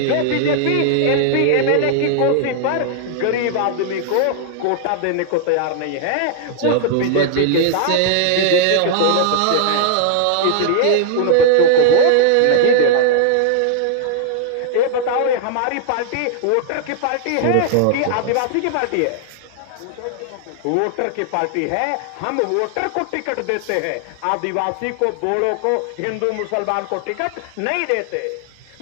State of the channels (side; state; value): both; different; correlation 0.00